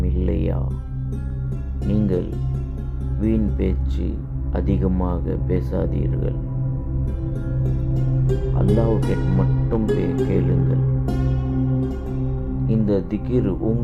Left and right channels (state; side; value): identical; both; correlation 1.00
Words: இல்லையா? நீங்கள் வீண் பேச்சு அதிகமாக பேசாதீர்கள். அல்லாஹ்வை மட்டும் கேளுங்கள். இந்த திக்ர்